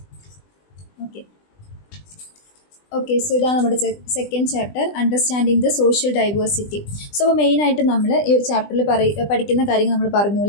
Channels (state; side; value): late; right; 20 ms